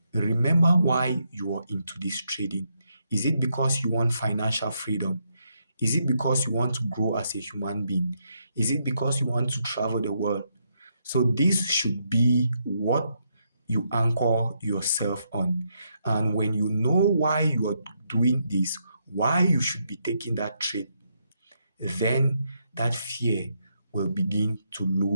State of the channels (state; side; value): inverted; both; correlation -0.78